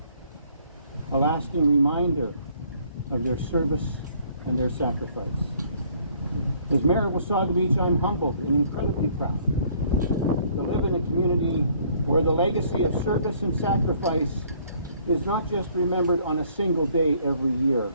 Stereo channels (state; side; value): inverted; both; correlation -0.61